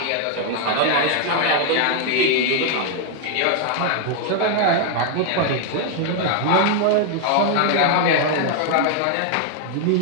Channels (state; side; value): different; both; correlation 0.00